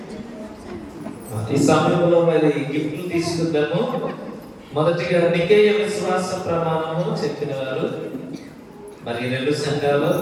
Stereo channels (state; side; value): identical; both; correlation 1.00